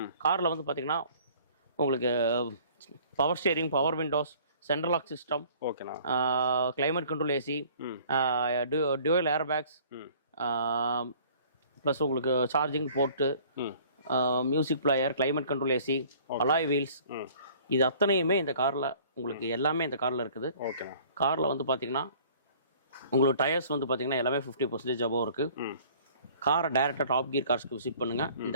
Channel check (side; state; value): both; inverted; correlation -0.53